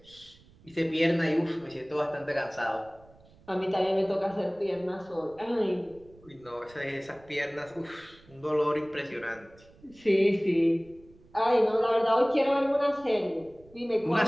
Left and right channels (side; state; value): right; noise; rumble, 26 dB below the sound